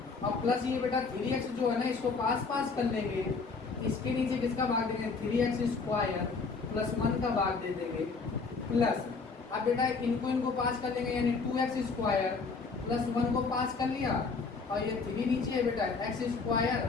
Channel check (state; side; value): quieter; right; 4.5 dB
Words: और प्लस ये बेटा 3x जो है ना इसको पास पास कर लेंगे, इसके नीचे किसका भाग देंगे 3x स्क्वायर प्लस 1 का भाग दे देंगे प्लस। अब बेटा इनको पास कर लेंगे, यानी 2x स्क्वायर प्लस 1 को पास कर लिया और ये 3 नीचे है बेटा x